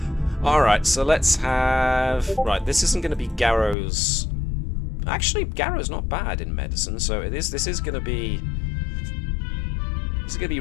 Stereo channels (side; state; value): right; drops out; at 3.8 s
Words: Alright, so let's have... Right, this isn't going to be Garrow's... Actually, Garrow's not bad in medicine, so this is going to be... This is going to be